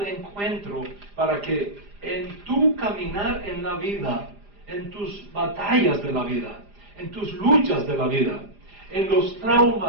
encuentro para que en tu caminar en la vida, en tus batallas de la vida, en tus luchas de la vida, en los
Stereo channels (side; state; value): left; late; 4.9 ms